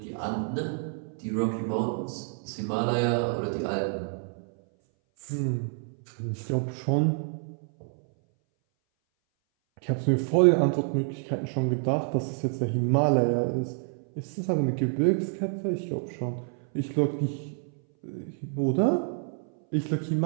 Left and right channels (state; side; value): silent; left; 59 dB below the other